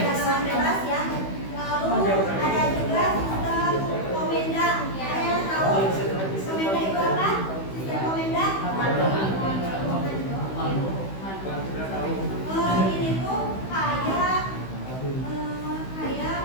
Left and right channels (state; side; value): late; right; 16 ms